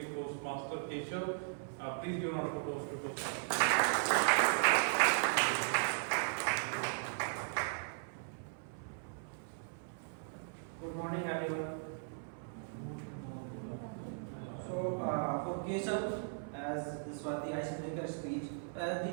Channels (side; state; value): left; silent; 53 dB below the other